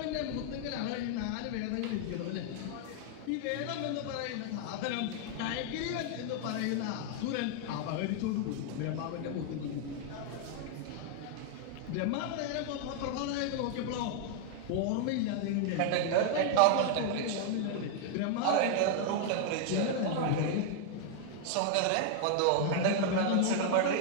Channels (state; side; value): different; both; correlation 0.00